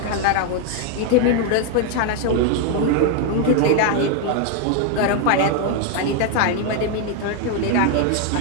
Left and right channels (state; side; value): different; both; correlation 0.00